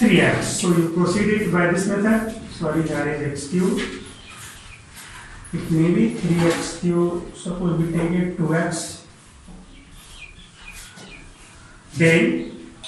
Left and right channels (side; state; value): both; identical; correlation 1.00